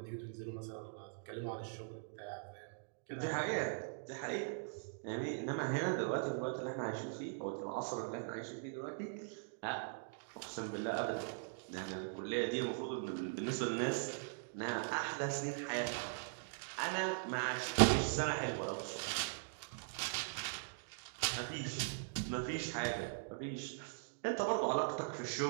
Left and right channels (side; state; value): left; silent; digital silence